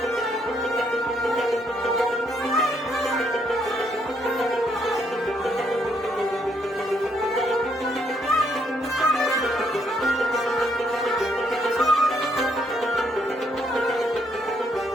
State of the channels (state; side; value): normal; both; correlation 0.72